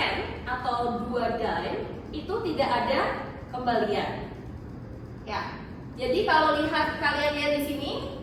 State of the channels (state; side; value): identical; both; correlation 1.00